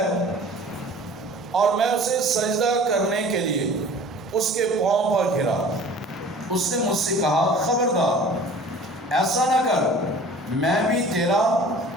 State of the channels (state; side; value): normal; both; correlation 0.45